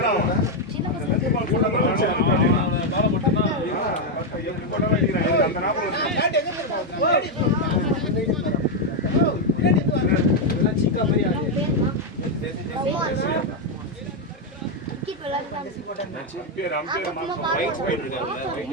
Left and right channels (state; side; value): normal; both; correlation 0.02